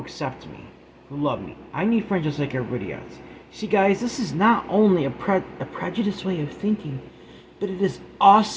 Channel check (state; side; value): identical; both; correlation 1.00